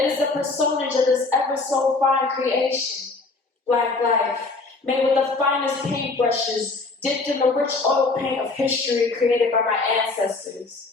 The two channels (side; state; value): right; quieter; 3.6 dB